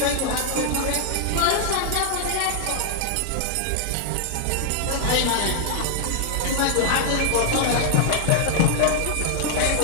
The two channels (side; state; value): both; different; correlation 0.00